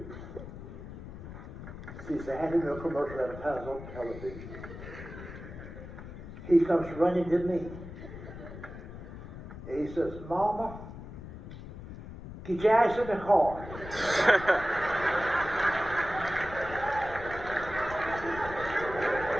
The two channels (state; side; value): noise; left; rumble, 12 dB below the sound